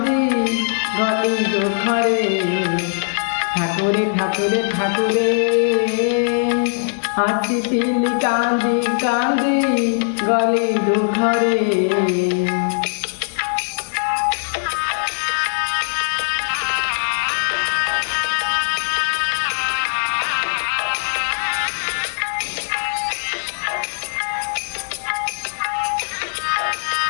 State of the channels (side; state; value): right; silent; digital silence